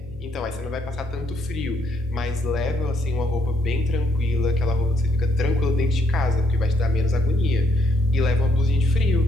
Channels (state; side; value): noise; left; hum, 20 dB below the sound